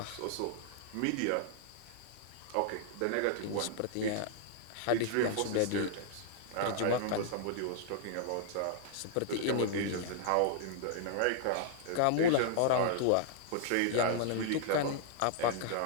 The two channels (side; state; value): both; different; correlation -0.01